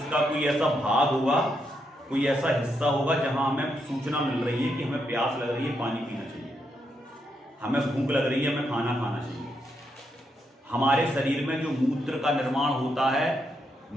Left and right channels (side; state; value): both; normal; correlation 0.80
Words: का कोई ऐसा भाग होगा, कोई ऐसा हिस्सा होगा जहां हमें सूचना मिल रही है कि हमें प्यास लग रही है, पानी पीना चाहिए, हमें भूख लग रही है, हमें खाना खाना चाहिए। हमारे शरीर में जो मूत्र का निर्माण होता है,